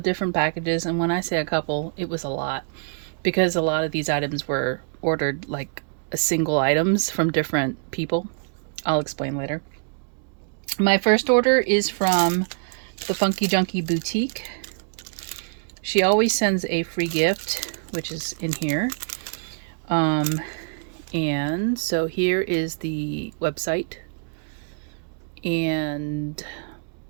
different packages, and when I say a couple, it was a lot because a lot of these items were ordered like a single items from different people. I'll explain later. My first order is from the Funky Junkie Boutique. She always sends a free gift, which is in here. And so here is the website and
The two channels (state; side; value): silent; left; digital silence